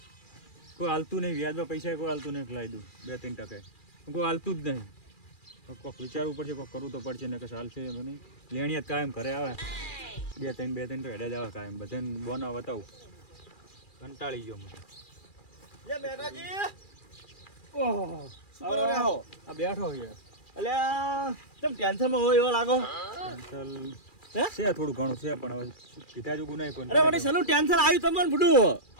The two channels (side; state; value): right; late; 2.4 ms